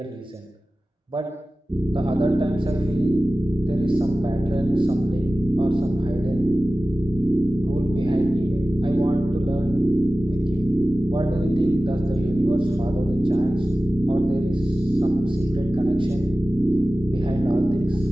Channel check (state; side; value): normal; both; correlation 0.96